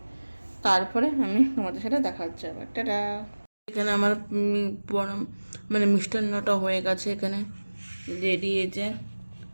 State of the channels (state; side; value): inverted; both; correlation -1.00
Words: তারপরে আমি তোমাদের সাথে দেখা হচ্ছে আবার। টাটা। এখানে আমার মানে মিষ্টান্নটা হয়ে গেছে, এখানে রেডি, যে